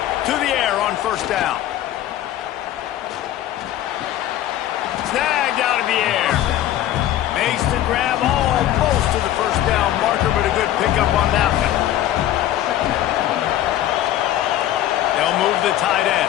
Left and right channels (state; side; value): quieter; right; 12.7 dB